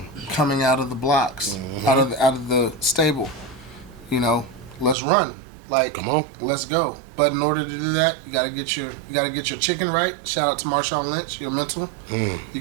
coming out of the blocks, out of the stable. Let's run. Come on, let's go. But in order to do that, you gotta get your chicken right. Shout out to Marshawn Lynch, your mental. You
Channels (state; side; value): drops out; left; at 5.0 s